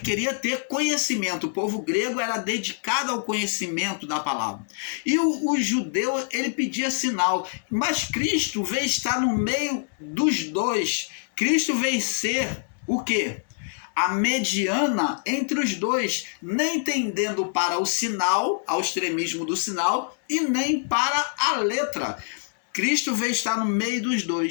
ter conhecimento. O povo grego era dedicado ao conhecimento da palavra. E o judeu, ele pedia sinal. Mas Cristo veio estar no meio dos dois. Cristo veio ser o quê? A mediana entre os dois, nem tendendo para o sinal, ao extremismo do sinal, e nem para a letra. Cristo veio estar no meio dos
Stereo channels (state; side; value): silent; right; digital silence